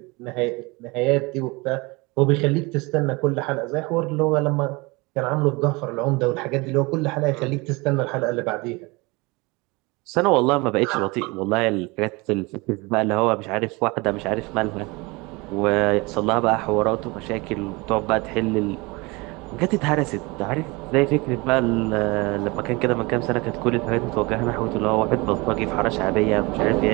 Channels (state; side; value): quieter; left; 25.3 dB